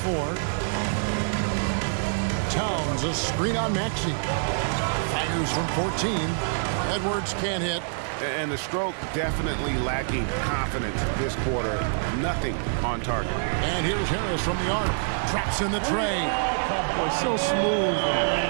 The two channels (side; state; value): left; silent; digital silence